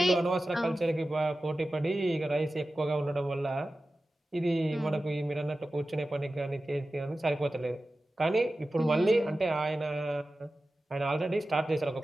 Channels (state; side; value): normal; both; correlation 0.95